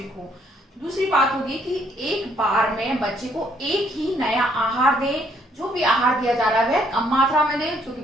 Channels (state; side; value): normal; both; correlation 0.68